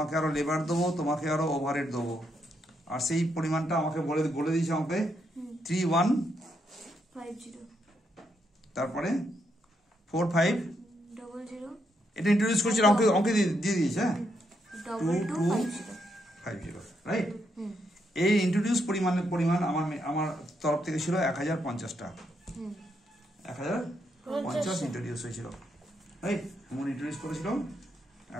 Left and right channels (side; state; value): both; normal; correlation 0.78